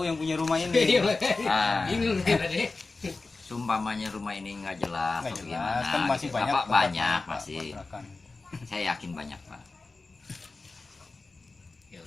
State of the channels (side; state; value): right; quieter; 3.7 dB